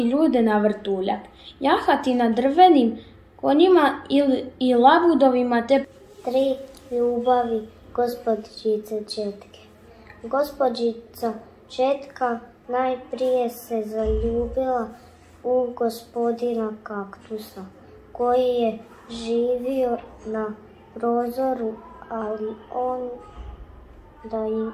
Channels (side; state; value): both; identical; correlation 1.00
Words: ljude na vrtuljak, jahati na drvenim konjima i labudovima te 3 ljubavi gospođice Četke. Gospođica Četka najprije se zaljubila u gospodina Kaktusa, koji je živio na prozoru, ali on da